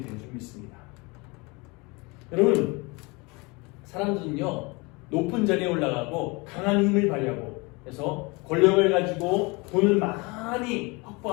되는 줄 믿습니다. 여러분, 사람들은요, 높은 자리에 올라가고 강한 힘을 발휘하고 그래서 권력을 가지고 돈을 많이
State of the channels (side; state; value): right; quieter; 27.0 dB